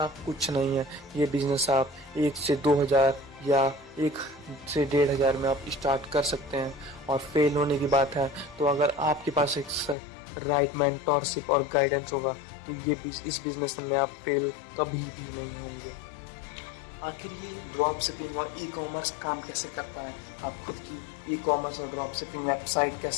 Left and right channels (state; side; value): drops out; right; at 10.0 s